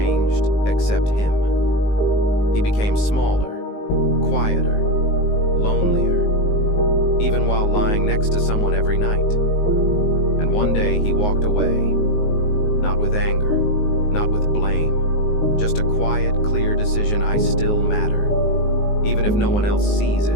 except him. He became smaller, quieter, lonelier, even while lying next to someone every night. And one day he walked away, not with anger, not with blame, just a quiet, clear decision: I still matter. Even if no one else sees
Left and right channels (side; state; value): right; late; 19 ms